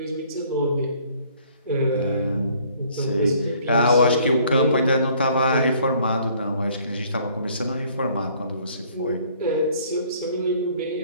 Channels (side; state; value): both; inverted; correlation -0.59